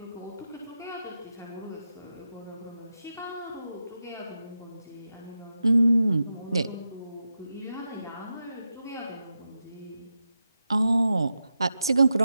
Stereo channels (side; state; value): both; inverted; correlation -0.89